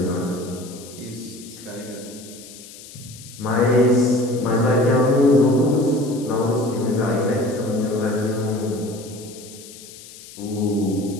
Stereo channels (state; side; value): noise; left; hiss, 17 dB below the sound